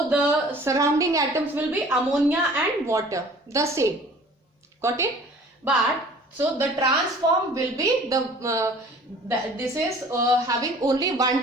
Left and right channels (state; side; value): normal; both; correlation 0.49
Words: the surrounding atoms will be ammonia and water, the same, got it? But so the transform will be this is having only one